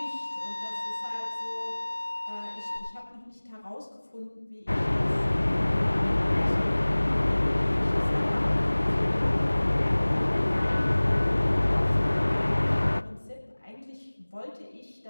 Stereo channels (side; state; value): both; inverted; correlation -1.00